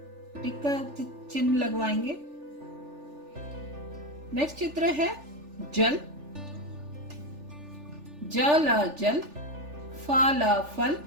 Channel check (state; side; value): late; left; 3.4 ms